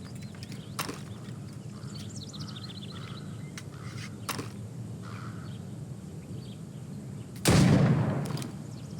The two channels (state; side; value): identical; both; correlation 1.00